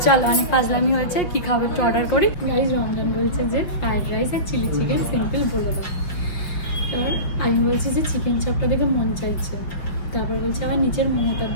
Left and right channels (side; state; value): right; late; 5.8 ms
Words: চলো, অনেক ফাজলামি হয়েছে। কি খাবো একটু অর্ডার করি। গাইজ রমজান বলছে যে ফ্রাইড রাইস আর চিলি চিকেন সিম্পল বলে দাও। এবার আমি বলছি যে চিকেন চপটা দেখে মন চাইছে, তারপর বলছে আবার নিচের মোমোটার